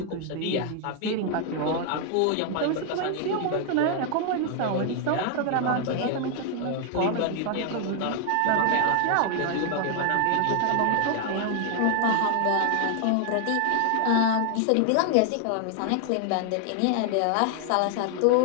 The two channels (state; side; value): different; both; correlation 0.00